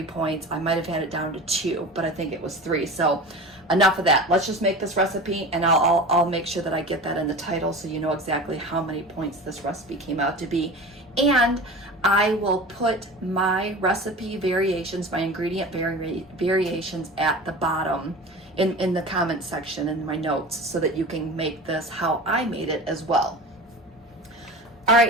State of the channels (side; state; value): both; normal; correlation 0.34